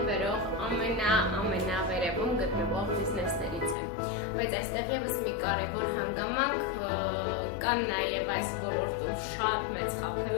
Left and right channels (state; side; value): drops out; right; at 3.8 s